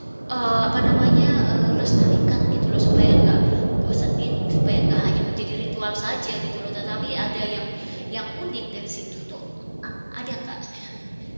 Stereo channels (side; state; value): both; inverted; correlation -1.00